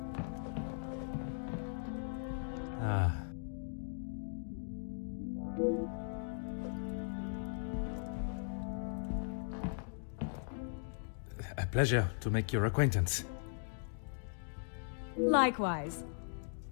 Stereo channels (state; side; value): silent; right; digital silence